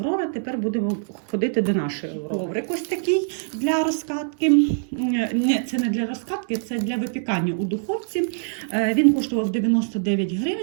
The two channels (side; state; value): left; silent; digital silence